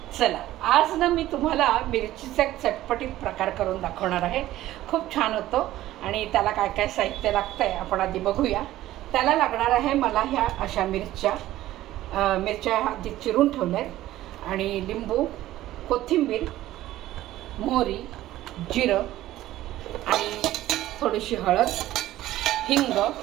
चला, आज ना मी तुम्हाला मिरचीचा एक चटपटीत प्रकार करून दाखवणार आहे। खूप छान होतो आणि त्याला काय काय साहित्य लागतंय आपण आधी बघूया। त्याला लागणार आहे मला ह्या अशा मिरच्या आधी चिरून ठेवल्यात आणि लिंबू, कोथिंबीर, मोहरी, जिरं आणि थोडीशी हळद, हिंग,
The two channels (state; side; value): quieter; left; 14.8 dB